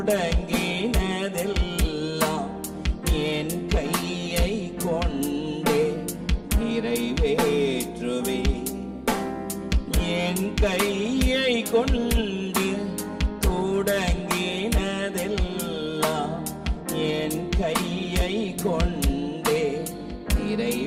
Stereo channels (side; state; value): both; identical; correlation 1.00